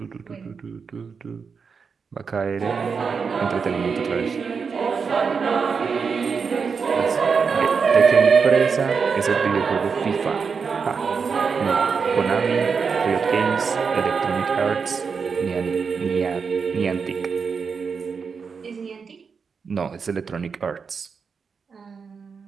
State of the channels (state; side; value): quieter; left; 5.6 dB